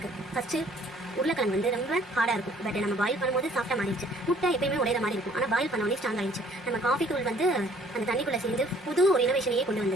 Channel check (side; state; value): both; normal; correlation 0.58